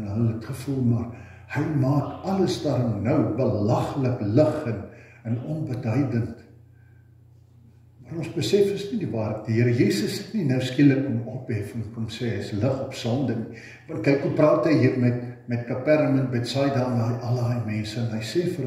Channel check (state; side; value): identical; both; correlation 1.00